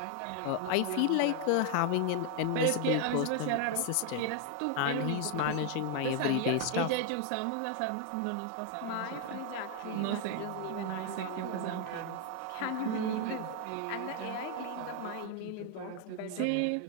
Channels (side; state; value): both; different; correlation 0.00